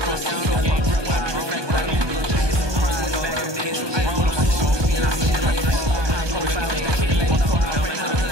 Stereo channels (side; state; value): left; late; 1.2 ms